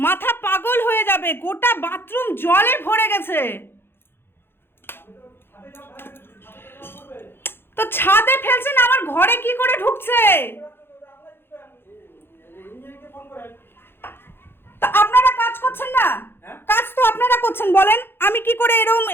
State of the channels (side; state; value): right; late; 0.11 ms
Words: মাথা পাগল হয়ে যাবে, গোটা বাথরুম জলে ভরে গেছে। তো ছাদে ফেলছেন, আমার ঘরে কি করে ঢুকছে? তো আপনারা কাজ করছেন না? কাজ তো আপনারা করছেন, বলেন আমি কি করে এরম